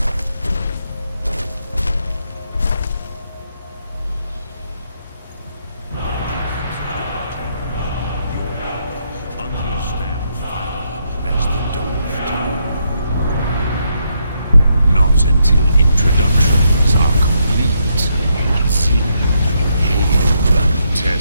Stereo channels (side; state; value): both; inverted; correlation -0.78